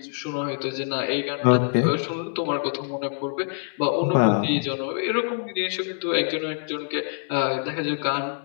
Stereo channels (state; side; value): silent; right; 62 dB below the other